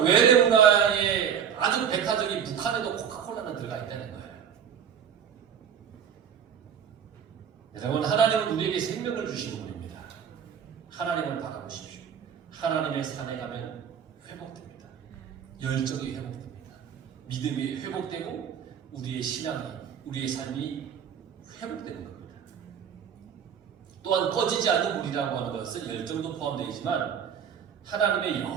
외대 문화의 아주 백화점이 북한에도 코카콜라는 들어가 있다는 거예요. 여러분 하나님은 우리에게 생명을 주신 분입니다. 하나님을 바라보십시오. 하나님의 산에 가면 회복됩니다. 열정이 회복됩니다. 믿음이 회복되고 우리의 신앙이, 우리의 삶이 회복되는 겁니다. 또한 꺼지지 않는 불이라고 하는 것은 열정도 포함되어 있지만 하나님의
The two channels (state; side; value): quieter; left; 8.1 dB